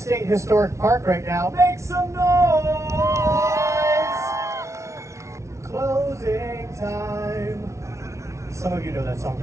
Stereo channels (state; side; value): late; left; 0.14 ms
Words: Historic Park right now, make some noise! Closing time. Some of you know that song